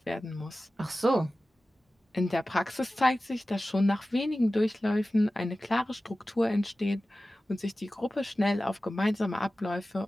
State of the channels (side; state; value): both; normal; correlation 0.96